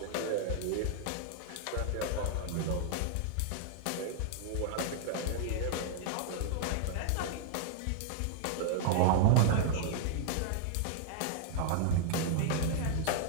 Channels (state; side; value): different; both; correlation -0.01